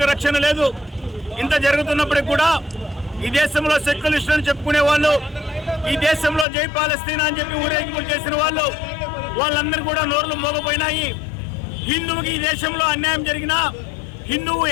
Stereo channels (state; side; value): drops out; right; at 6.5 s